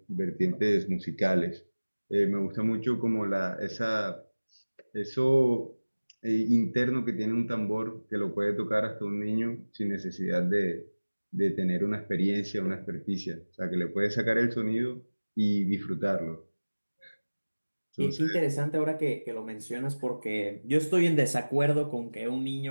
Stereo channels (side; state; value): both; inverted; correlation -1.00